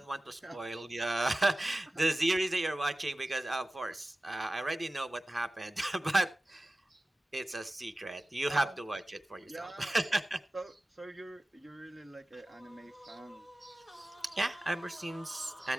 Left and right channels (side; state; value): both; normal; correlation 0.96